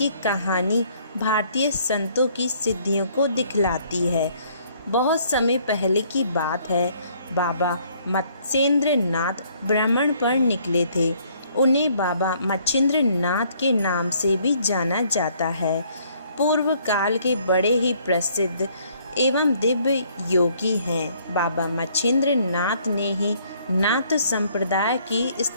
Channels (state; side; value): inverted; both; correlation -0.63